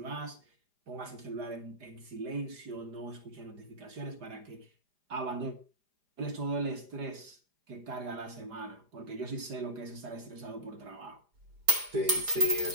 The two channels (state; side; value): late; left; 4.9 ms